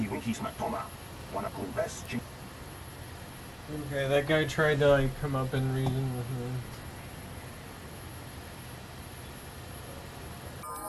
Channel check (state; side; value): identical; both; correlation 1.00